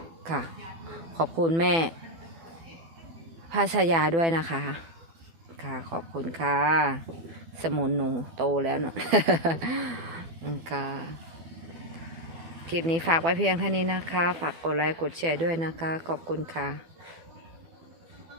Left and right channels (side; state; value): left; late; 12 ms